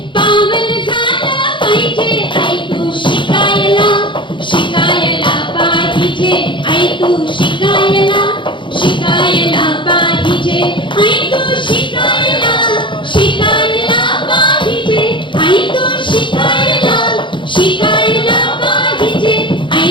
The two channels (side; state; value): right; late; 0.23 ms